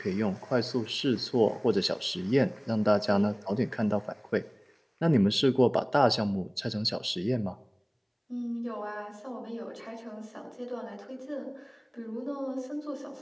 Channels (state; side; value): identical; both; correlation 1.00